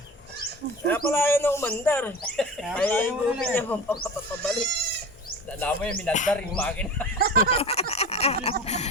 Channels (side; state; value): both; normal; correlation 0.33